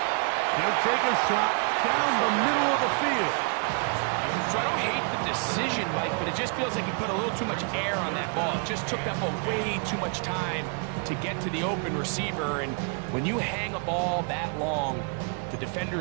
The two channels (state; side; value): quieter; left; 39.4 dB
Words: He'll take a shot down the middle of the field. So I don't hate the decision, Mike, but it just feels like he put a little too much air on that ball. It just took that ball way too much time to get to the open receiver. And when you hang a ball that long, the